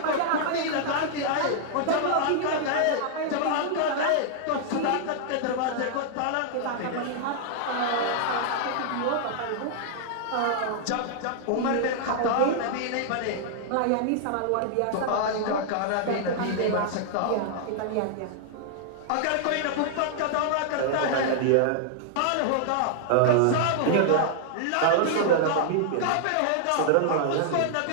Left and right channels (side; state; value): both; different; correlation -0.01